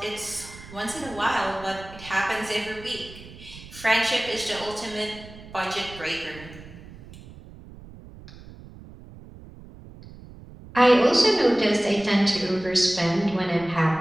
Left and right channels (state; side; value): noise; right; rumble, 18 dB below the sound